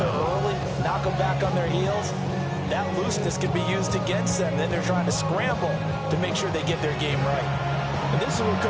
early, knock them back on their heels, that looseness can be used against them. Then they're trying to scramble to make sure they get their game right. And this is where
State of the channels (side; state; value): both; identical; correlation 1.00